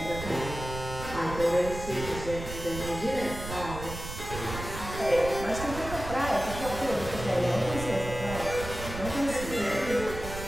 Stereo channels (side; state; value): right; noise; rumble, 9 dB below the sound